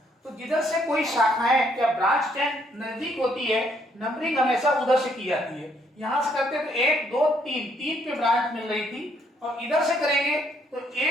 तो जिधर से कोई शाखाएं या ब्रांच चेन नजदीक होती है, नंबरिंग हमेशा उधर से की जाती है। यहां से करते तो 1 2 3 पे ब्रांच मिल रही थी, और इधर से करेंगे तो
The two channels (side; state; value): both; normal; correlation 0.69